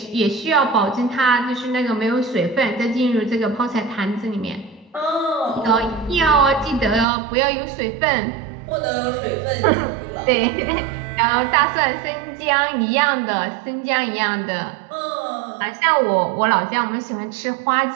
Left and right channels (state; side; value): drops out; left; at 7.1 s